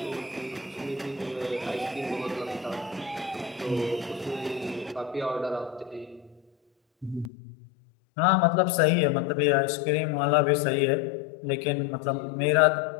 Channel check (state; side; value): drops out; right; at 7.3 s